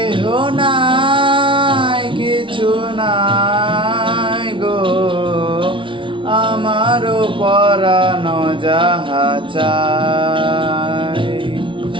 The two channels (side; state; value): left; late; 0.25 ms